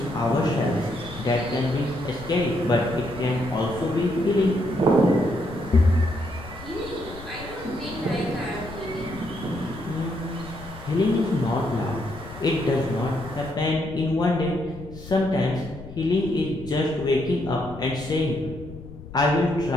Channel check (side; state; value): left; noise; rumble, 15 dB below the sound